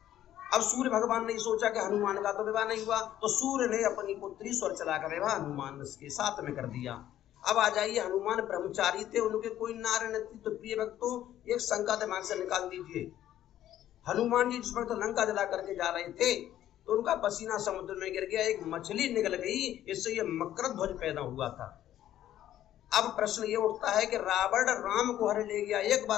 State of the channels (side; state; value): right; quieter; 12.2 dB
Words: अब सूर्य भगवान ने सोचा कि हनुमान का तो विवाह नहीं हुआ, तो सूर्य ने अपनी पुत्री स्वर चलाकर विवाह हनुमान के साथ में कर दिया। अब आ जाइए, हनुमान ब्रह्मचारी थे, उनके कोई नारी न थी। तो प्रिय भक्तों, एक शंका दिमाग से निकाल दीजिए। हनुमान जी जिस वक्त लंका जला करके जा रहे थे तो उनका पसीना समुद्र में गिर गया, एक मछली निकल गई, इससे ये मकर ध्वज पैदा हुआ था। अब प्रश्न ये उठता है कि रावण राम को हरण ले गया, एक